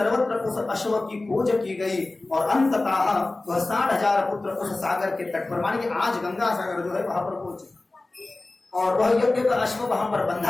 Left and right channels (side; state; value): right; quieter; 3.1 dB